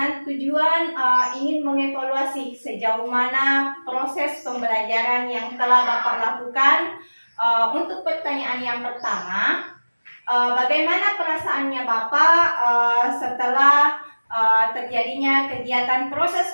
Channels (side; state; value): both; inverted; correlation -1.00